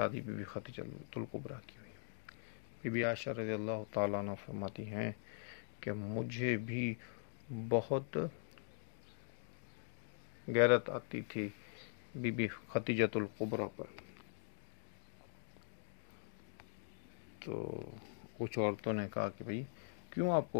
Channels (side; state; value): right; silent; digital silence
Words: بی بی خدیجۃ الکبریٰ کی ہوئی۔ بی بی عائشہ رضی اللہ تعالیٰ عنہ فرماتی ہیں کہ مجھے بھی بہت غیرت آتی تھی بی بی خدیجۃ الکبریٰ پر، تو کچھ عورتوں نے کہا کہ بھئی کیوں آپ